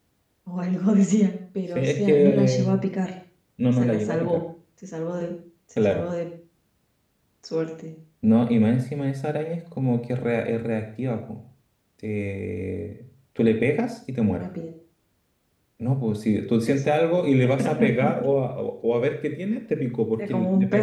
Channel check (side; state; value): both; identical; correlation 1.00